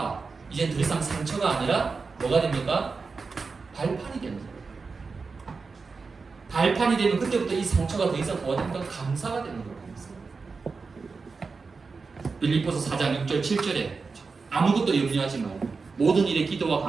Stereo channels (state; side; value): quieter; left; 4.6 dB